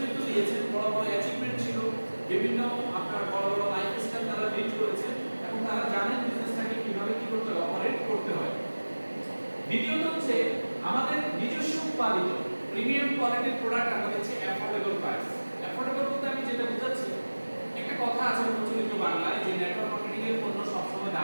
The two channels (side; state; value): both; inverted; correlation -1.00